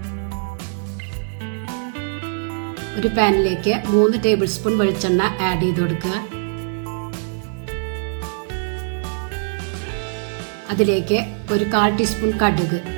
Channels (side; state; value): left; silent; digital silence